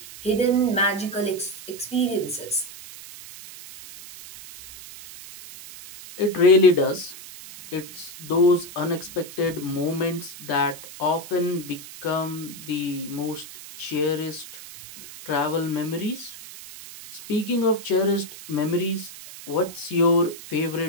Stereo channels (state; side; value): noise; right; hiss, 14 dB below the sound